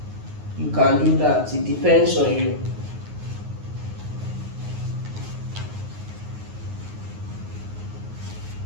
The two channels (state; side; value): late; left; 9.5 ms